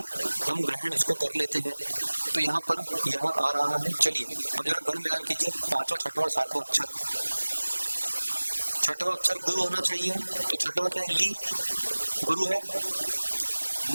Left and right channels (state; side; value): inverted; both; correlation -1.00